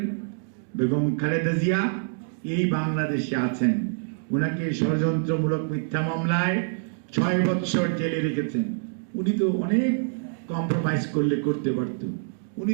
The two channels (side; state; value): left; silent; digital silence